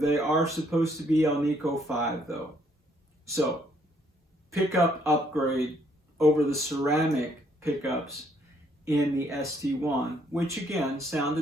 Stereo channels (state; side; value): normal; both; correlation 0.68